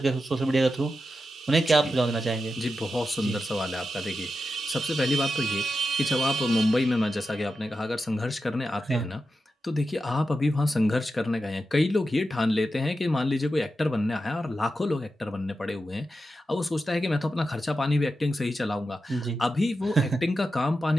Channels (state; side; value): normal; both; correlation 0.90